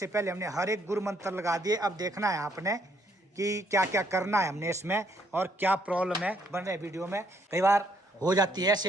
पहले हमने हर एक गुरु मंत्र लगा दिए। अब देखना है आपने कि क्या क्या करना है हमने इसमें और क्या प्रॉब्लम है। बन रहे वीडियो में कई बार हो जाती है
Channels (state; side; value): normal; both; correlation 0.70